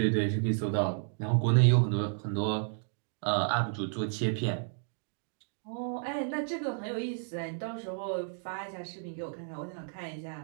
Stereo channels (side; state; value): left; silent; digital silence